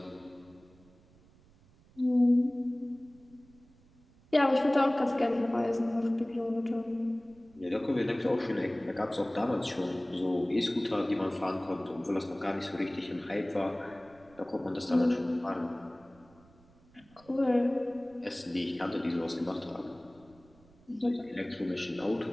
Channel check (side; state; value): right; noise; rumble, 28 dB below the sound